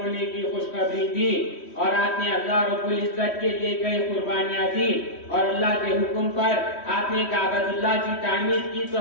کی خوشخبری دی اور آپ نے اللہ رب العزت کے لیے کئی قربانیاں دی اور اللہ کے حکم پر آپ نے کعبۃ اللہ کی تعمیر کی، تو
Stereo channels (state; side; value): late; right; 3.1 ms